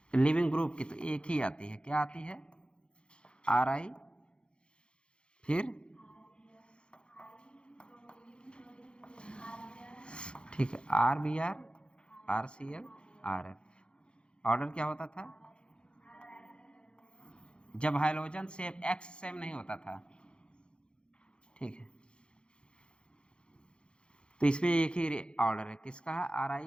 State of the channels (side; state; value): right; late; 0.054 ms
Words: लिविंग ग्रुप की, तो एक ही आती है, क्या आती है? RI, फिर ठीक है RBr, RCl, RF। ऑर्डर क्या होता था जब हाइड्रोजन सेम X सेम नहीं होता था, ठीक है। तो इसमें एक ही ऑर्डर है, किसका है? RI